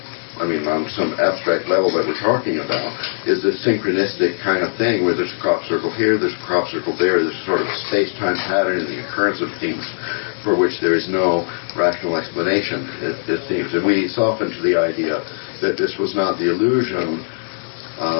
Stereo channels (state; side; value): silent; right; digital silence